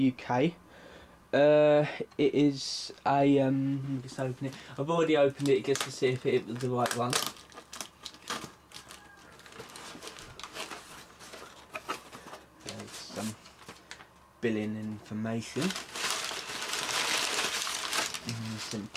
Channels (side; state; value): both; identical; correlation 1.00